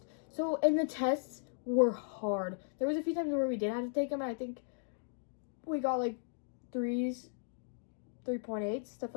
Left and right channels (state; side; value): silent; right; digital silence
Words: So, and the tests were hard. There was a few times where we did have to take them. And I think we got like 3s, 3.8, stuff